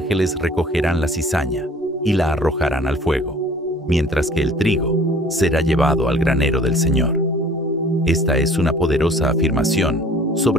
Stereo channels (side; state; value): both; normal; correlation 0.50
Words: recogerán la cizaña y la arrojarán al fuego, mientras que el trigo será llevado al granero del Señor. Esta es una poderosa afirmación